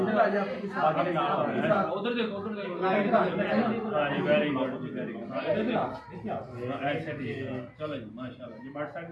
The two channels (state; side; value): identical; both; correlation 1.00